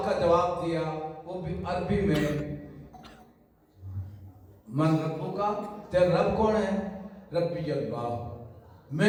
का जवाब दिया वो भी अरबी में, मन रब्बुका, तेरा रब कौन है? रब्बी अल्लाह,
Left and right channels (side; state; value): both; identical; correlation 1.00